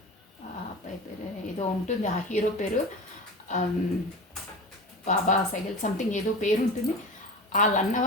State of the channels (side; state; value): both; normal; correlation 0.31